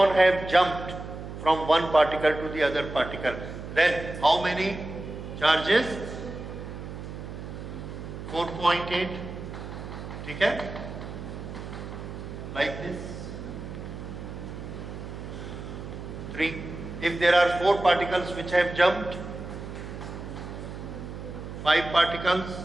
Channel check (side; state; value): right; noise; hum, 9 dB below the sound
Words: have jumped from one particle to the other particle, then how many charges? 4.8. Okay? Like this. 3. If there are 4 particles which have jumped, 5 particles,